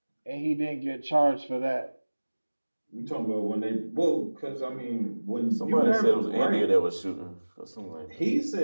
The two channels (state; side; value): inverted; both; correlation -1.00